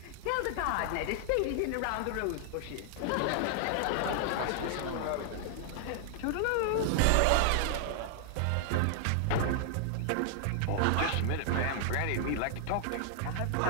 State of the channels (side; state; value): both; different; correlation 0.00